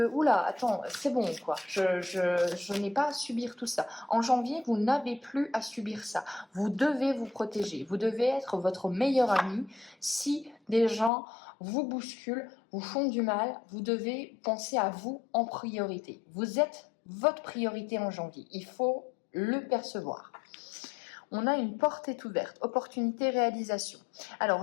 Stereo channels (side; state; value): right; drops out; at 11.1 s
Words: « Oula, attends, c'est bon, quoi. Je n'ai pas à subir tout ça. » En janvier, vous n'avez plus à subir ça. Vous devez vous protéger. Vous devez être votre meilleur ami. Si des gens vous bousculent, vous font du mal, vous devez penser à vous en priorité. Vous êtes votre priorité en janvier. Il faut le percevoir. On a une porte est ouverte, opportunité, réalisation. Alors,